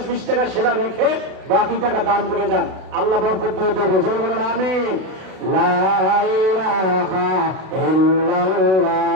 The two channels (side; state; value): left; late; 32 ms